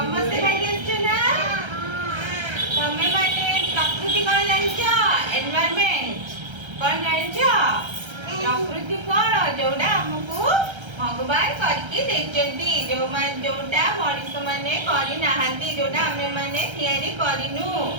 ଖାଇକି ଆସିଛ ନା? ତମେ ମାନେ ପ୍ରକୃତି କଣ ଜାଣିଛ? ଏନଭାୟରମେଣ୍ଟ କଣ ଜାଣିଛ? ପ୍ରକୃତି କଣ? ଯୋଉଟା ଆମକୁ ଭଗବାନ କରିକି ଦେଇଛନ୍ତି, ଯୋଉଟା ମଣିଷ ମାନେ କରିନାହାନ୍ତି, ଯୋଉଟା ଆମେ ମାନେ ତିଆରି କରିନୁ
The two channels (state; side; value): late; left; 1.3 ms